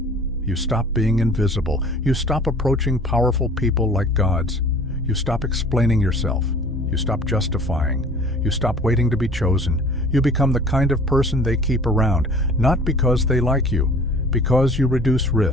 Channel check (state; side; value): normal; both; correlation 0.48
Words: You stop being invisible. You stop approaching powerful people like gods. You stop explaining yourself. You stop justifying. You stop waiting to be chosen. You become the kind of person they keep around, not because they like you, because you reduce